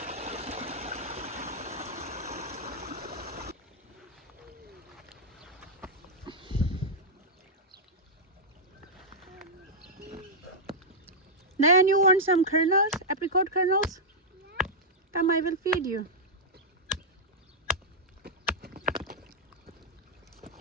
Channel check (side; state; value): both; normal; correlation -0.08